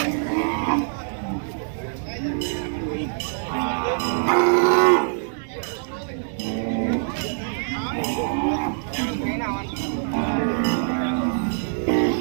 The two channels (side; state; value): left; silent; digital silence